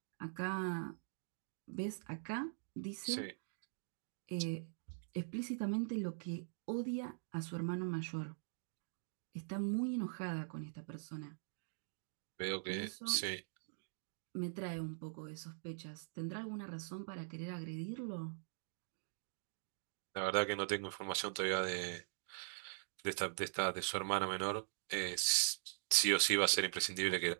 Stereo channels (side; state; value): left; silent; digital silence